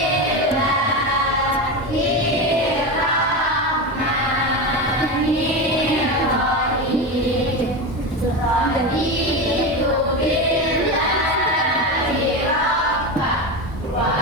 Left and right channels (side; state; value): both; normal; correlation 0.19